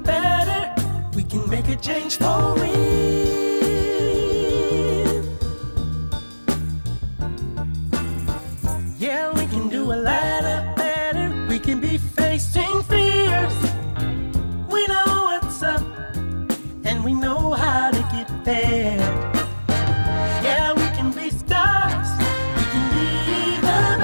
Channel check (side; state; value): both; inverted; correlation -1.00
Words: better. We can make a change for real. Yeah, we can do a lot better. We can be facing fears. We know what's up, and we know how to get there. Yeah, we can be stars. We can be the